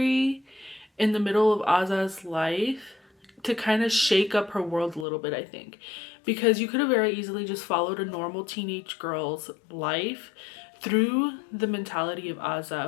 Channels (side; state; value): right; drops out; at 5.1 s